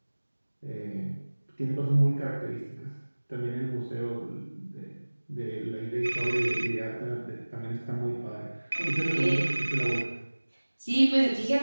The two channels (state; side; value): inverted; both; correlation -1.00